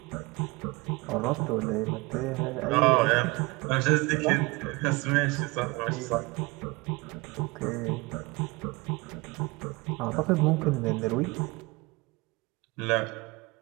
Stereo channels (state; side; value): quieter; left; 24.5 dB